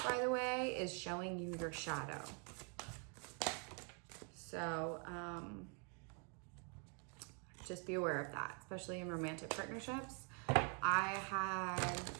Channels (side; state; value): left; quieter; 38.0 dB